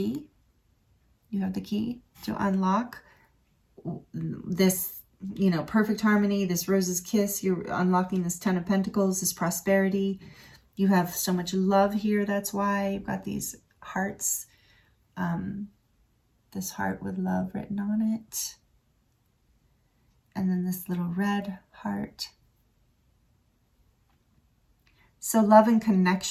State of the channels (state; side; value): identical; both; correlation 1.00